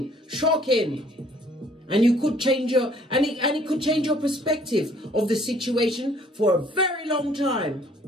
shocking. And you could change your, and it could change your perspective of the situation for a very long time.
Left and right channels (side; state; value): both; normal; correlation 0.59